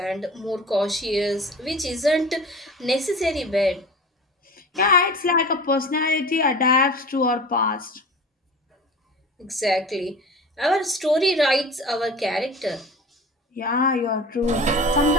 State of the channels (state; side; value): normal; both; correlation 0.37